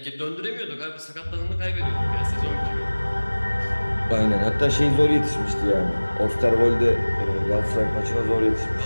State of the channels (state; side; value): inverted; both; correlation -1.00